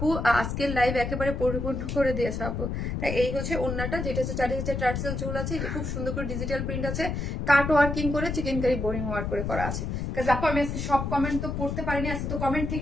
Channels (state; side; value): noise; left; rumble, 3 dB below the sound